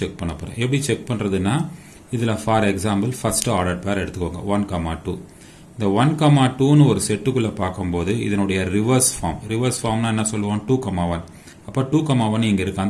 செக் பண்ண போறேன். எப்படி செக் பண்றதுன்னா இதுல ஃபார் எக்ஸாம்பிள் ஃபர்ஸ்ட் ஆர்டர் பேர் எடுத்துக்கோங்க 1,2. இந்த 1,2ன்னு ஒரு செட்டுக்குள்ள பார்க்கும்போது இதனுடைய ரிவர்ஸ் ஃபார்ம்னா என்ன சொல்லுவோம் 2,1. அப்போ 2,1 இங்க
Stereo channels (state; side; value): identical; both; correlation 1.00